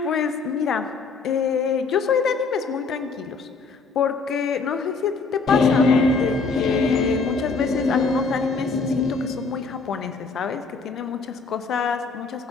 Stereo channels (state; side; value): quieter; right; 4.6 dB